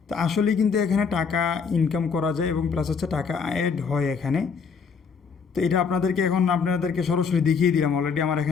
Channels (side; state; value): right; quieter; 5.8 dB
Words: তো আসলেই কিন্তু এখানে টাকা ইনকাম করা যায় এবং প্লাস হচ্ছে টাকা অ্যাড হয় এখানে। তো এটা আপনাদেরকে সরাসরি দেখিয়ে দিলাম। অলরেডি আমার